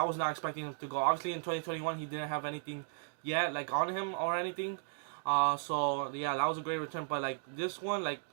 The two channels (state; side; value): silent; left; digital silence